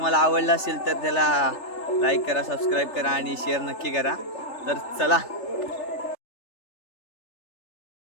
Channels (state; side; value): late; right; 3.3 ms